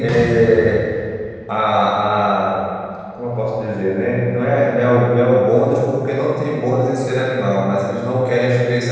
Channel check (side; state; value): both; identical; correlation 1.00